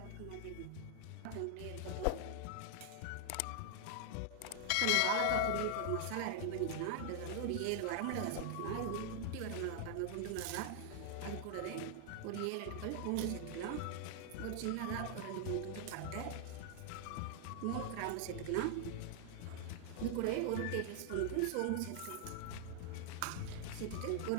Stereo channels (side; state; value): both; different; correlation 0.00